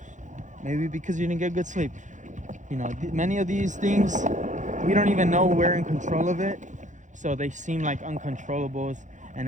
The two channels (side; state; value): left; late; 0.36 ms